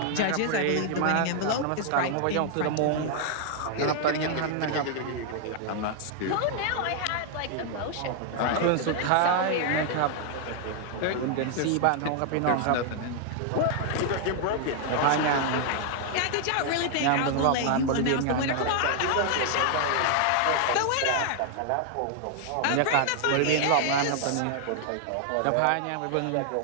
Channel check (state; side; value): different; both; correlation 0.00